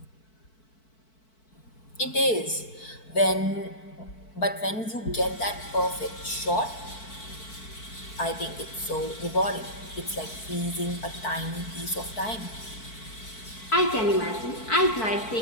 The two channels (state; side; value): late; right; 4.6 ms